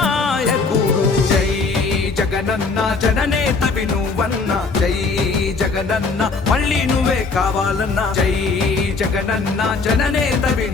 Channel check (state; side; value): quieter; right; 4.2 dB